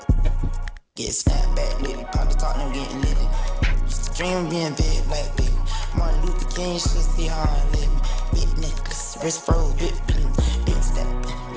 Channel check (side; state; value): both; identical; correlation 1.00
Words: Dream being big like big. Martin Luther King should see how I live. Big necklace, wrist froze, big step,